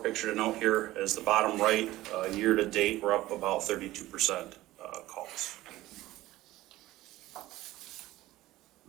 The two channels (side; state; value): left; quieter; 16.7 dB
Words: picture to note here is the bottom right, year to date, we're up about 32% calls.